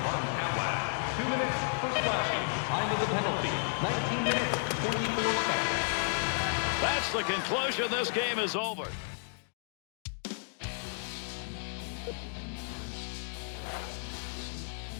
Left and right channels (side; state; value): right; silent; digital silence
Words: Martin Atwood. 2 minutes for slashing. Time of the penalty, 19 minutes, 24 seconds. That's the conclusion. This game is over.